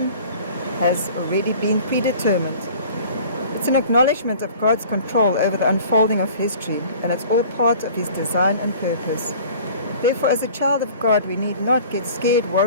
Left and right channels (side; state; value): both; inverted; correlation -0.46